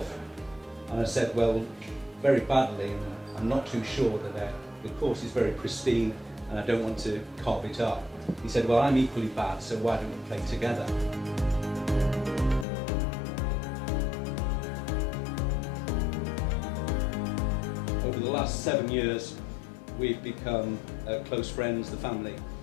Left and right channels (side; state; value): right; drops out; at 12.7 s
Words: And I said, well, very badly, and I'm not too sure that the course is very pristine and I don't want to carve it up. He said, well, I'm equally bad, so why don't we play together? Over the last 7 years, we've become close friends, the family